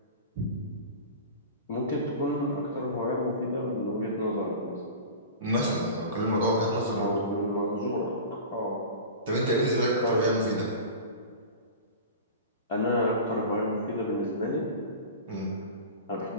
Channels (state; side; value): inverted; both; correlation -0.33